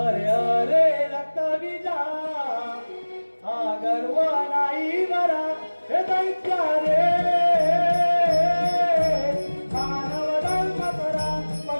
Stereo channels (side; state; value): both; inverted; correlation -1.00